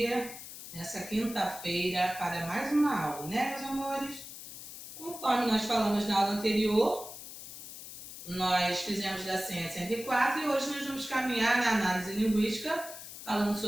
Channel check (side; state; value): left; noise; hiss, 12 dB below the sound